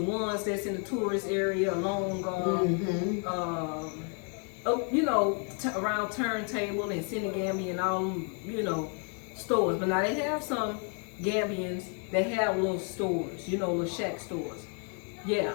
ones that's in the tourist area along, around Turntable and Senegambia and all them, stores. But now they have some Gambians that have little stores, little shack stores. Yeah,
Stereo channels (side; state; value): right; quieter; 39.4 dB